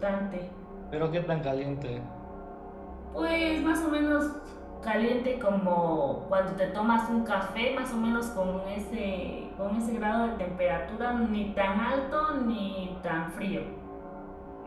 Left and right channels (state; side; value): identical; both; correlation 1.00